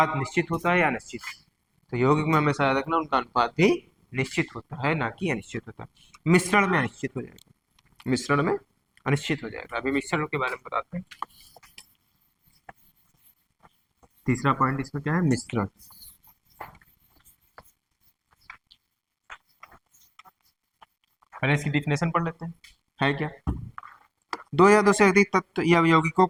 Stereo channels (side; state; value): both; identical; correlation 1.00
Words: निश्चित होता है या अनिश्चित? तो यौगिक में हमेशा याद रखना, उनका अनुपात भी निश्चित होता है, ना कि अनिश्चित होता है। मिश्रण में अनिश्चित हो जाएगा, मिश्रण में अनिश्चित हो जाएगा। अभी मिश्रण के बारे में बताते हैं। तीसरा पॉइंट इसमें क्या है? मिश्रण। पहले इसकी डिफिनेशन पढ़ लेते हैं, है क्या? दो या दो से अधिक तत्व या यौगिकों